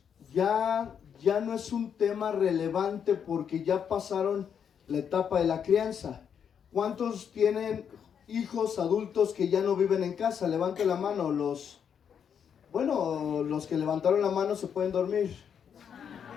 ya no es un tema relevante porque ya pasaron la etapa de la crianza. ¿Cuántos tienen hijos adultos que ya no viven en casa? Levante la mano. Los que levantaron la mano se pueden dormir.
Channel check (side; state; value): right; quieter; 7.7 dB